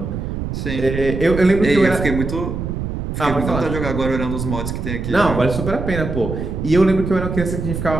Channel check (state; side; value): noise; right; rumble, 4 dB below the sound